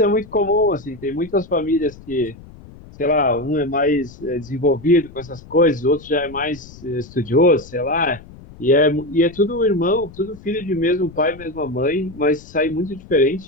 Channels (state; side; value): noise; left; rumble, 19 dB below the sound